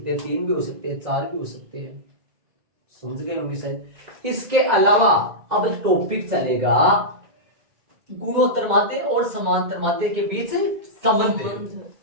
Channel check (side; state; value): left; late; 2.0 ms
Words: हैं, 3 भी हो सकते हैं, 4 भी हो सकते हैं। समझ गए होंगे शायद। इसके अलावा अब टॉपिक चलेगा गुणोत्तर माध्य और समांतर माध्य के बीच संबंध।